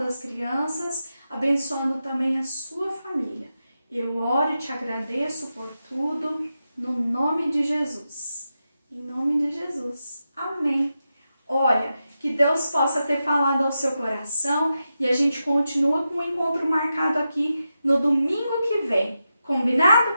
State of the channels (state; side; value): inverted; both; correlation -0.89